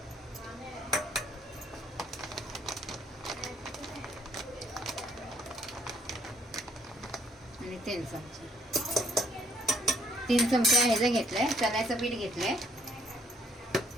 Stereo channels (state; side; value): normal; both; correlation 0.66